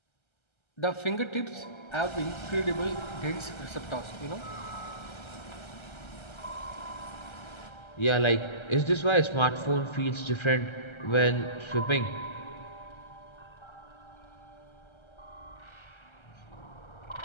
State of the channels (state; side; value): late; right; 1.3 ms